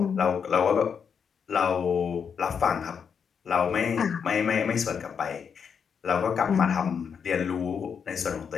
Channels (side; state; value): right; quieter; 6.8 dB